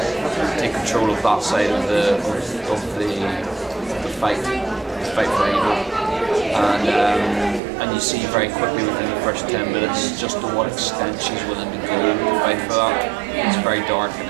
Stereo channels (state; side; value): drops out; left; at 7.6 s